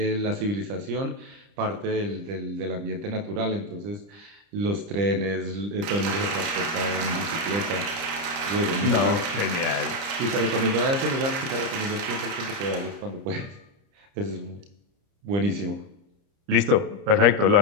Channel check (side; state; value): left; late; 30 ms